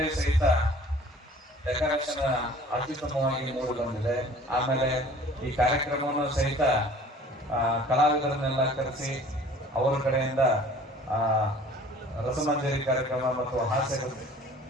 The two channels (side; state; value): both; normal; correlation 0.49